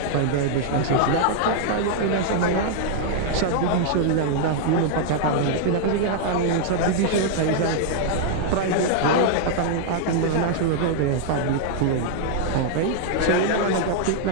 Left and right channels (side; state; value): both; different; correlation -0.01